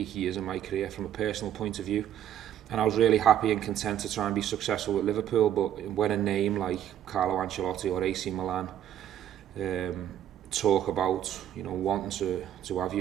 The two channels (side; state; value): left; quieter; 10.6 dB